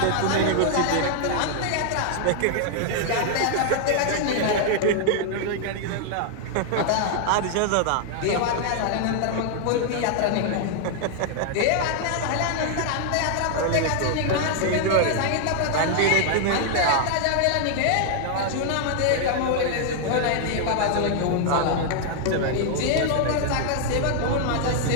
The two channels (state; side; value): different; both; correlation -0.01